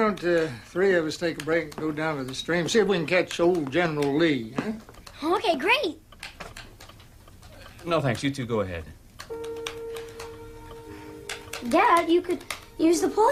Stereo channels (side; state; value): both; identical; correlation 1.00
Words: three of us take a break and go down to the stream, see if we can catch old General Lee, huh? Okay, great. No, thanks. You two go ahead. Dad, you could use the pole